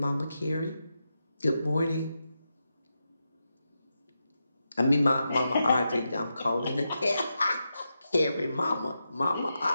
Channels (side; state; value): both; inverted; correlation -0.88